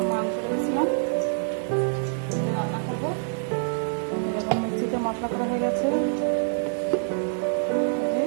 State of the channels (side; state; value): left; silent; digital silence